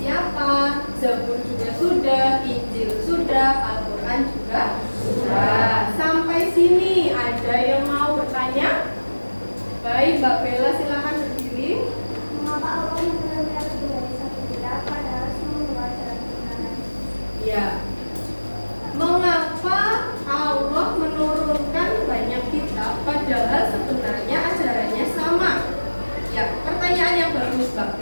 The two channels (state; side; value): inverted; both; correlation -1.00